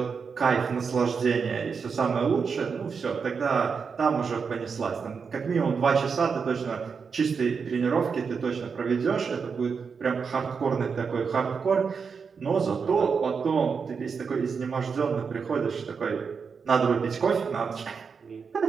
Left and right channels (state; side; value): quieter; left; 5.7 dB